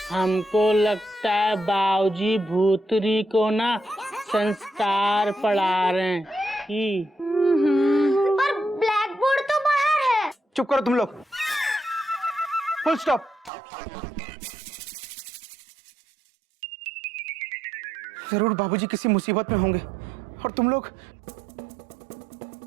हमको लगता है बाबूजी भूतरी को ना संस्कार पढ़ा रहे हैं कि। पर ब्लैक बोर्ड तो बाहर है। चुप करो तुम लोग। Full stop. जरूर बाबूजी किसी मुसीबत में होंगे और तुम लोग।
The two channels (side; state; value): left; drops out; at 13.5 s